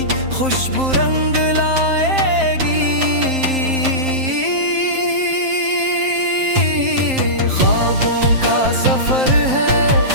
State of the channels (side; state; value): left; late; 7.6 ms